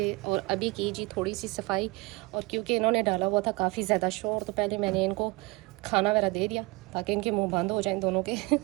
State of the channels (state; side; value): quieter; left; 25.3 dB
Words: और अभी की जी थोड़ी सी सफाई। और क्योंकि इन्होंने डाला हुआ था काफ़ी ज़्यादा शोर, तो पहले मैंने इनको खाना वगैरह दे दिया ताकि इनके मुंह बंद हो जाएं दोनों के